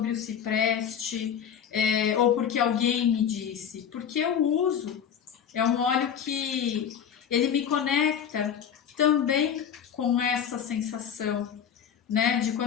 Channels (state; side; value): quieter; right; 8.2 dB